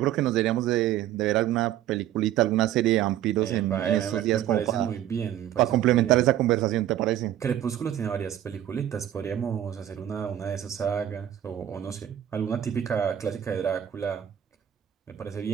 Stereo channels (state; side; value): quieter; left; 11.6 dB